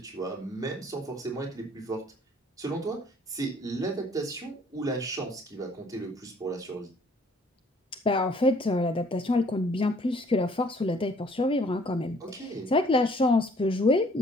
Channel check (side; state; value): both; normal; correlation 0.59